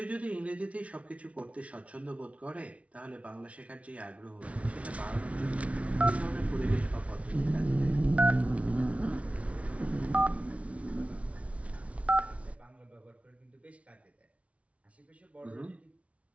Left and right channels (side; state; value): left; late; 0.064 ms